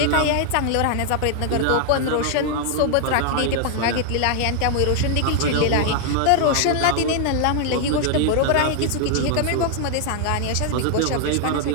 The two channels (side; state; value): both; different; correlation 0.00